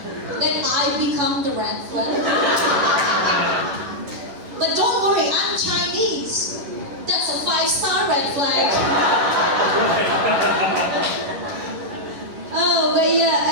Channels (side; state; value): left; late; 11 ms